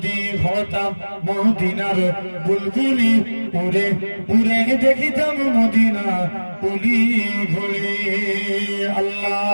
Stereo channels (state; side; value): inverted; both; correlation -1.00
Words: হতাম মদিনার বুলবুলি, উড়ে উড়ে দেখিতাম মদিনা অলি গলি।